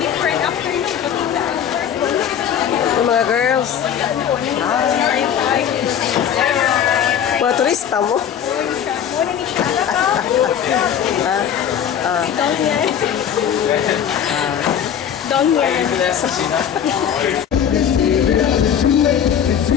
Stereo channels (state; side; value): quieter; right; 8.9 dB